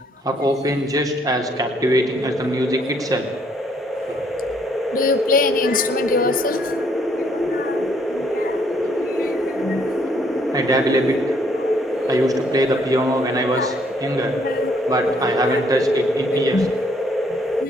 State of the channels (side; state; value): both; normal; correlation 0.67